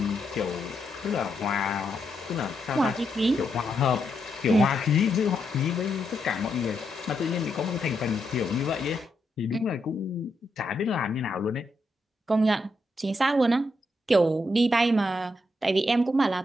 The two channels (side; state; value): both; normal; correlation 0.81